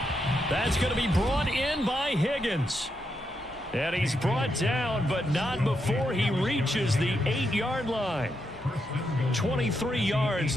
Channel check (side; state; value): both; normal; correlation 0.82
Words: That's going to be brought in by Higgins. And he's brought down, but not before he reaches the 8-yard line. 23 yards,